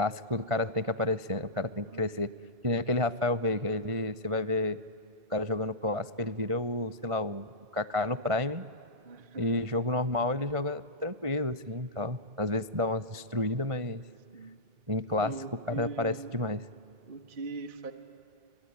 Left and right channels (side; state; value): left; late; 1.5 ms